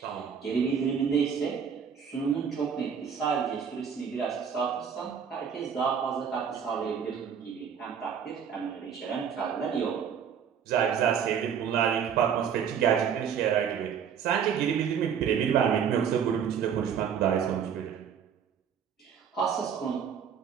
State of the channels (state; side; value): quieter; left; 7.6 dB